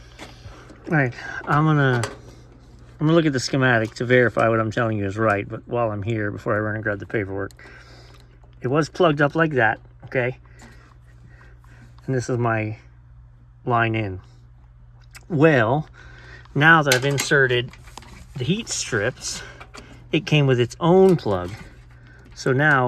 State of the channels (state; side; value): identical; both; correlation 1.00